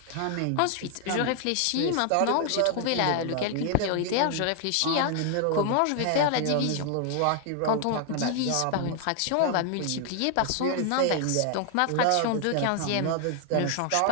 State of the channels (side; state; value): both; different; correlation 0.00